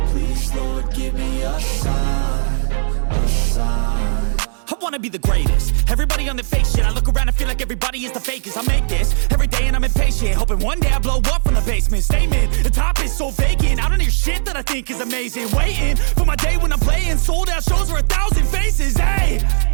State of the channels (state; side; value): silent; left; digital silence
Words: Please, Lord, give me a sign, a sign. I wanna be the greatest. Everybody on the fake shit. I look around and feel like everybody is the fakest. I make this every day and I'm impatient, hoping one day I blow up from the basement. Statement, the top is so vacant. I don't hear shit that I think is amazing. Waiting for my day when I'm playing sold out shows for 1,000 faces. Hey,